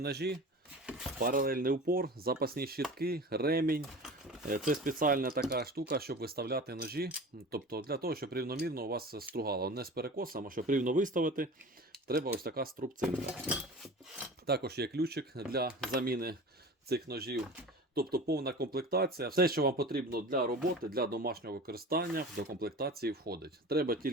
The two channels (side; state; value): both; normal; correlation 0.36